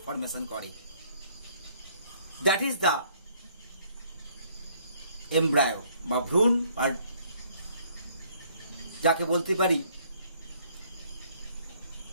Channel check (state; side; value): inverted; both; correlation -0.64